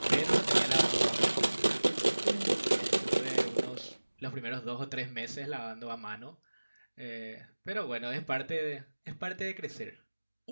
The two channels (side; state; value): both; inverted; correlation -1.00